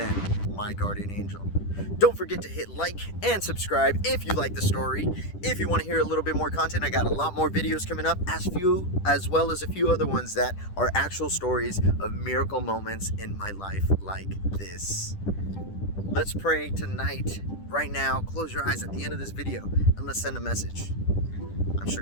my guardian angel. Don't forget to hit like and subscribe if you like the story. If you want to hear a little bit more content, I got a lot more videos coming up, as well as a few other ones that are actual stories of miracle moments in my life like this. Let's pray tonight, right now. Close your eyes at the end of this video and let's send a message. I'm sure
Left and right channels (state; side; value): late; right; 10 ms